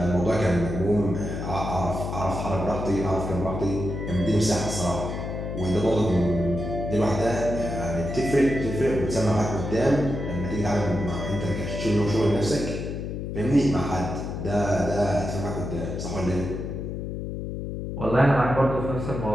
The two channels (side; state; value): left; noise; hum, 5 dB below the sound